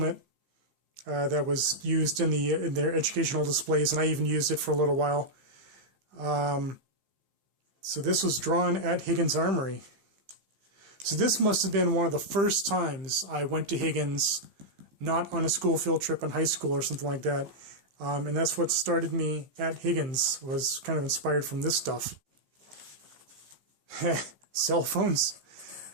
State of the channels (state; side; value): late; left; 15 ms